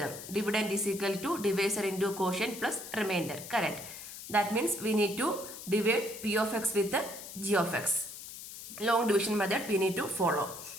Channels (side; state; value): left; noise; hiss, 12 dB below the sound